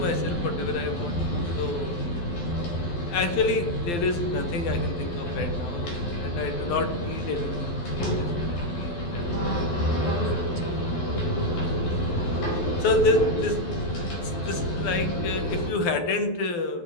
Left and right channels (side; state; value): right; late; 12 ms